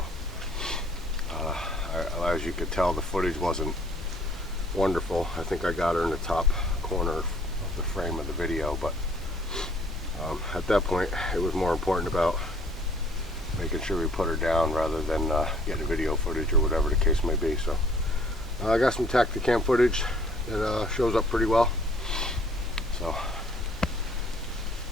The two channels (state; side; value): normal; both; correlation 0.59